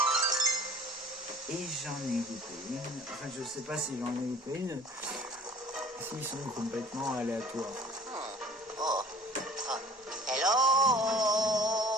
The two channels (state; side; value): normal; both; correlation 0.46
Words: Et j'en ai loupé une. Enfin, je sais pas si j'en ai loupé une. S'ils sont complètement aléatoires.